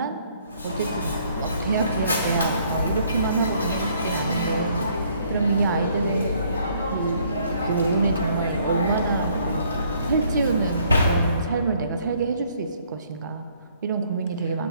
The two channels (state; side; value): inverted; both; correlation -0.64